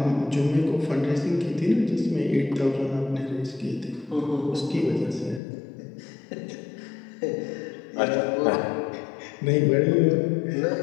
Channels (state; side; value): drops out; right; at 5.4 s